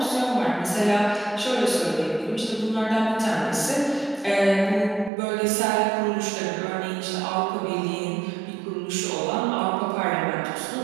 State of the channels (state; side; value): drops out; left; at 5.1 s